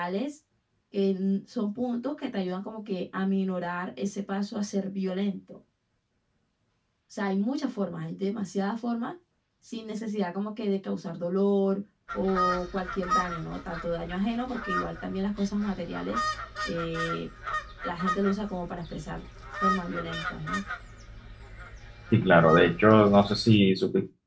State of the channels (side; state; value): both; identical; correlation 1.00